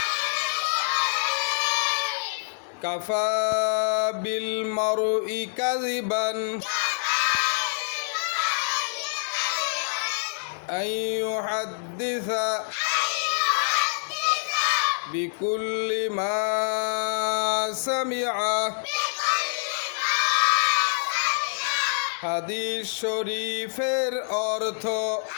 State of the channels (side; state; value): right; silent; digital silence